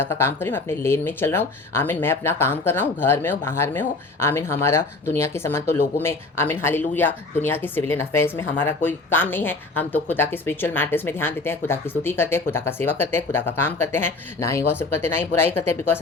का काम कर रही हूँ, मैं अपने लेन में चल रहा हूँ। आमीन, मैं अपना काम कर रहा हूँ, घर में हो बाहर में हो। आमीन, हमारा दुनिया के समान तो लोगों में, आमीन हालेलुया, दुनिया के सिविलियन अफेयर्स में हमारा कोई काम नहीं है। हम तो खुदा के स्पिरिचुअल मैटर्स में ध्यान देते हैं, खुदा की स्तुति करते हैं, खुदा का सेवा करते हैं, खुदा का काम करते हैं, ना ही गॉसिप करते, ना ही बुराई करते हैं, बिकॉज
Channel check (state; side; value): quieter; right; 3.4 dB